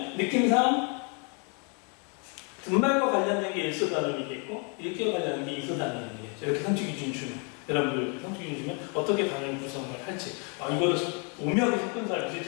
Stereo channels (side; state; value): right; quieter; 36.5 dB